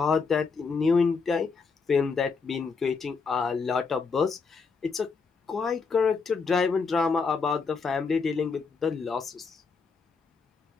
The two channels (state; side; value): quieter; right; 5.0 dB